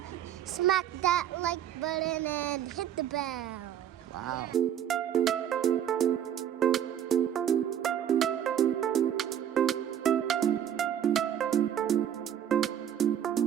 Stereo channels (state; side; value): quieter; left; 10.0 dB